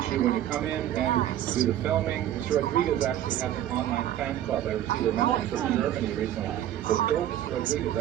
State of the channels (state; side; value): quieter; left; 12.1 dB